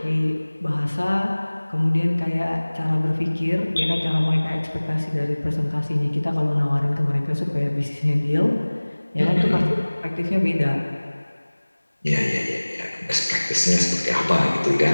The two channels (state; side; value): inverted; both; correlation -1.00